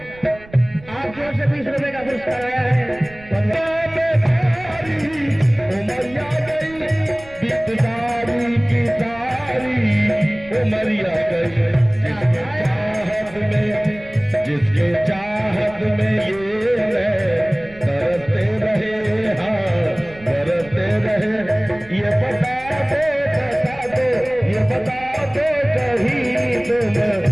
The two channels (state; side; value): noise; right; rumble, 21 dB below the sound